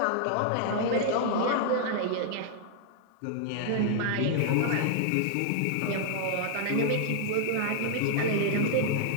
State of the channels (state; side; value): different; both; correlation -0.01